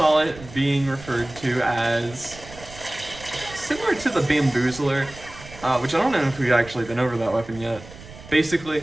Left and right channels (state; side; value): noise; right; rumble, 17 dB below the sound